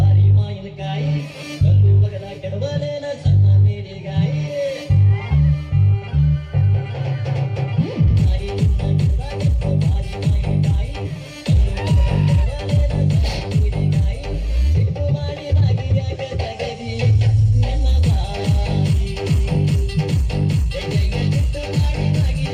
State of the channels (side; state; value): both; identical; correlation 1.00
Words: ಮಾವಿನಕಾಯಿ ಕಲ್ಲು ಬಗದ ಕೆಡವಲೇನ